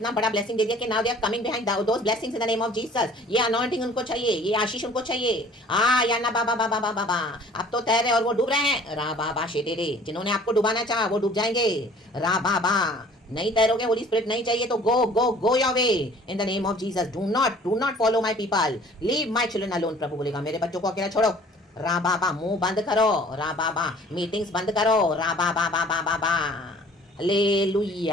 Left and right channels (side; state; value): both; normal; correlation 0.51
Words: बड़ा ब्लेसिंग दे दिया कि now they are coming behind those blessings in the name of Jesus. ये अनॉइंटिंग उनको चाहिए, ये आशीष उनको चाहिए। या ना बाबा बाबा बाबा बाबा। अब तो तैरे और वो डूब रहे हैं। रा बाबा शेटेरे। जिन्होंने आपको डुबाना चाहा वो डूब जाएंगे। रा बाबा। नहीं तैरोगे, होली स्पिरिट नहीं चाहिए तो go go go your way in the name of Jesus. Do not follow my people, leave my children alone. प्रभु बोलेगा मेरे बच्चों को अकेला छोड़ो। रा बाबा। मुंह बंद करो। रा बाबा। मीटिंग्स बंद करो। रा बाबा बाबा बाबा।